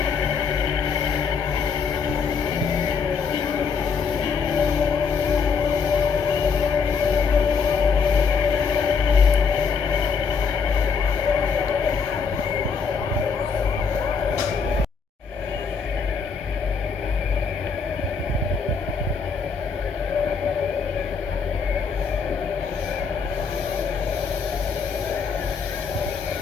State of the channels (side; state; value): right; quieter; 5.7 dB